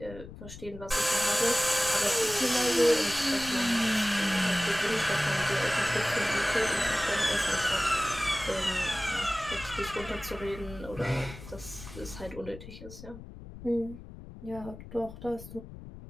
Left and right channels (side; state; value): left; noise; rumble, 14 dB below the sound